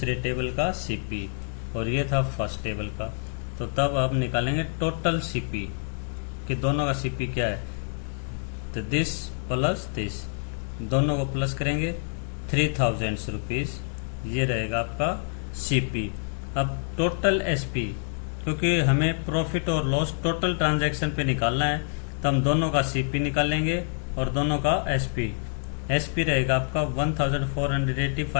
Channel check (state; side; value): silent; right; 60 dB below the other